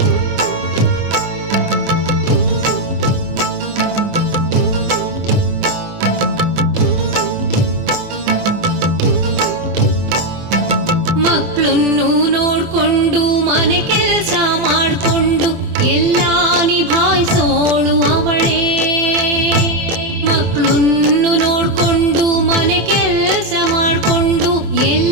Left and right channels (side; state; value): left; late; 24 ms